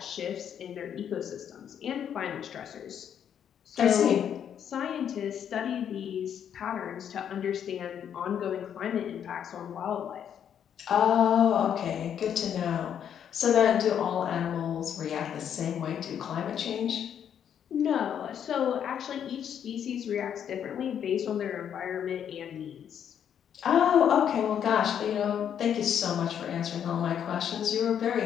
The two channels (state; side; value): quieter; right; 8.9 dB